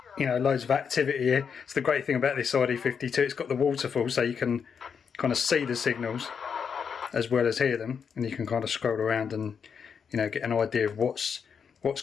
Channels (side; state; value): right; quieter; 6.6 dB